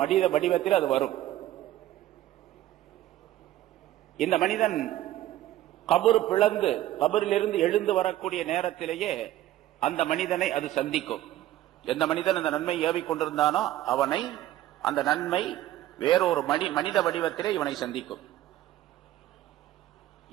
வடிவத்தில் அது வரும். இந்த மனிதன் கபர் பிளந்து கபரிலிருந்து எழுந்து வரக்கூடிய நேரத்திலேயே அந்த மனிதனை அது சந்திக்கும். எந்த மனிதன் அந்த நன்மை ஏவிக் கொண்டிருந்தானோ அவனை அந்த நன்மை வேறொரு மனித வடிவத்திலே இவனை சந்திக்கும்.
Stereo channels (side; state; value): left; quieter; 14.1 dB